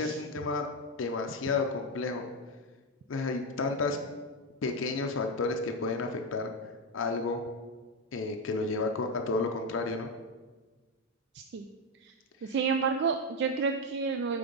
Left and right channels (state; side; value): normal; both; correlation 0.08